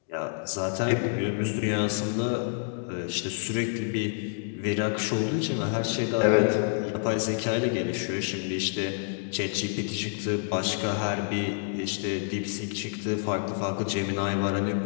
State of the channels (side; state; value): right; silent; digital silence